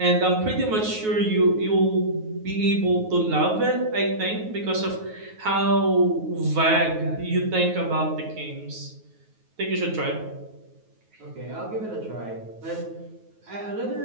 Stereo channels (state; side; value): late; left; 9.4 ms